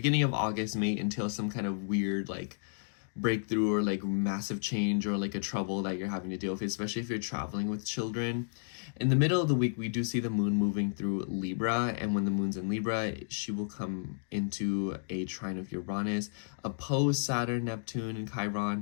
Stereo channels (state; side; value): silent; right; digital silence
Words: of August may entail some kind of weird like breakthrough or like massive change or like a trouble that you're having to deal with, especially if you're traveling with children. In the middle of the week, we do see the moon moving through Libra, and when the moon's in Libra, she will come into a trine of Uranus, oppose Saturn, Neptune, and